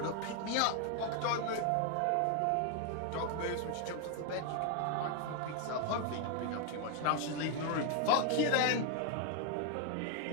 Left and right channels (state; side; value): different; both; correlation 0.00